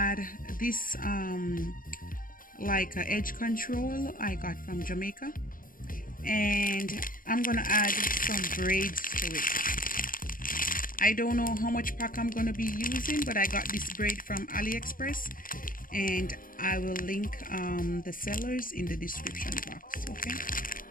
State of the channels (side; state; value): right; late; 0.40 ms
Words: this like a edge control I got from Jamaica, and I'm gonna add some braids to it. I don't know how much pack I'm gonna be using, but I got this braid from AliExpress, and I will link the sellers in the description box. Okay,